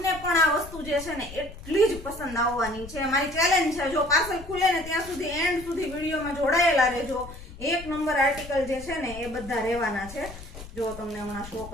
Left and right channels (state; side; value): noise; left; rumble, 14 dB below the sound